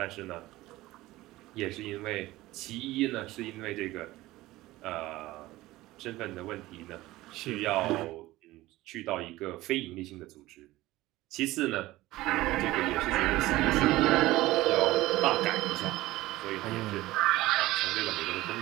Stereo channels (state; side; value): quieter; left; 17.8 dB